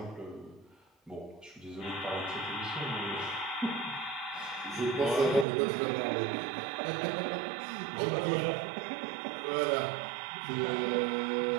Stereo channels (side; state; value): left; drops out; at 5.5 s